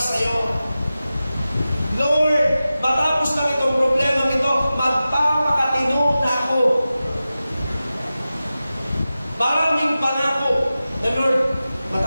sa iyo. Lord, matapos lang itong problema nito, magpapakatino na ako. Maraming pangako na, Lord,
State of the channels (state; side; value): inverted; both; correlation -0.94